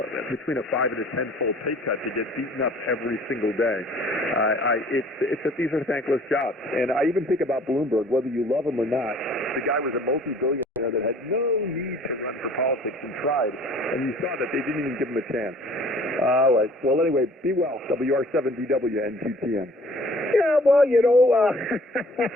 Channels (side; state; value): both; normal; correlation 0.52